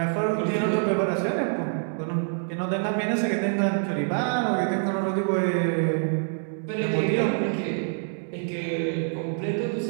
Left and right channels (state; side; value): silent; left; 59 dB below the other